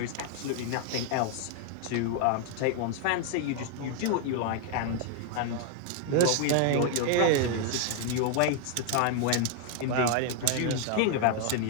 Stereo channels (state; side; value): different; both; correlation 0.00